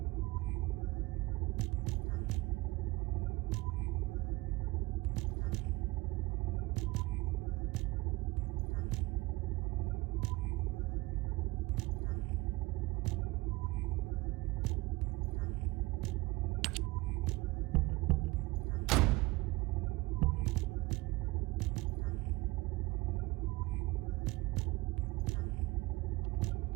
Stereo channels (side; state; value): left; quieter; 21.3 dB